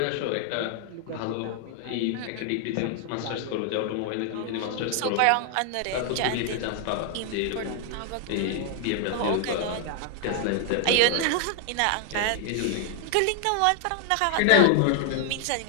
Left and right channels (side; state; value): both; different; correlation 0.00